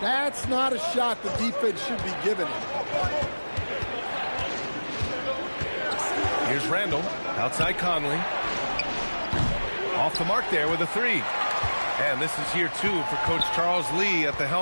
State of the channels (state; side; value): inverted; both; correlation -1.00